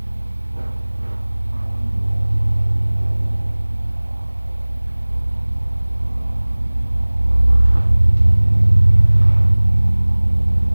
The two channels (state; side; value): inverted; both; correlation -1.00